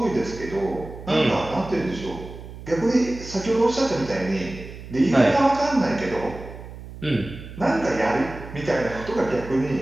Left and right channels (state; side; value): noise; right; hum, 14 dB below the sound